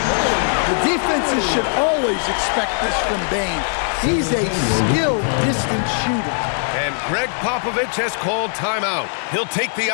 The defenses should always expect this from Bane. He's a skilled distance shooter. And Greg Popovich has called timeout. He'll take the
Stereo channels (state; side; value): silent; right; digital silence